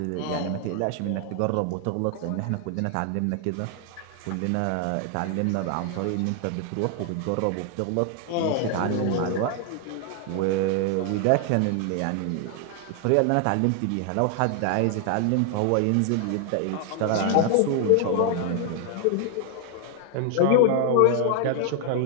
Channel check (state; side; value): different; both; correlation 0.00